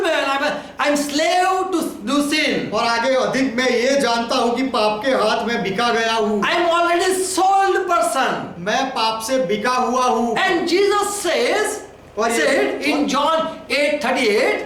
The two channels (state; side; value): identical; both; correlation 1.00